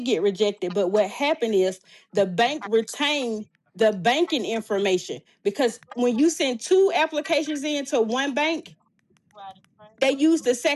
get rejected, but what happened is the bank retained the banking information because when you send two applications into one bank, they use the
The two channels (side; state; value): both; identical; correlation 1.00